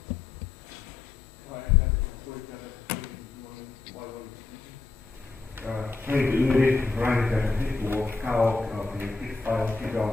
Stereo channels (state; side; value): quieter; right; 4.0 dB